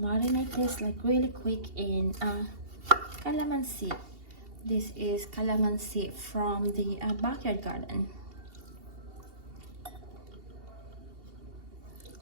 this really quick in calamansi. This is calamansi from the backyard garden.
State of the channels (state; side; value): late; left; 2.7 ms